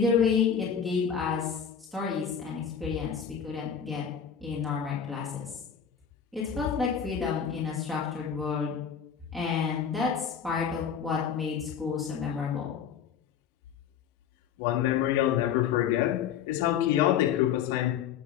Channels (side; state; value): right; quieter; 7.9 dB